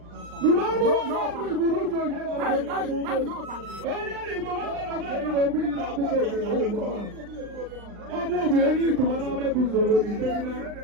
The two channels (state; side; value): late; left; 39 ms